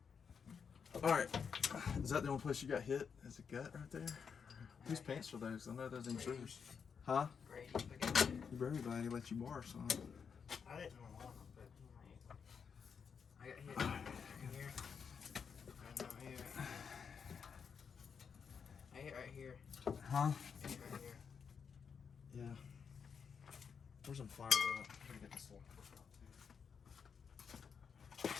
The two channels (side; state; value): right; quieter; 6.4 dB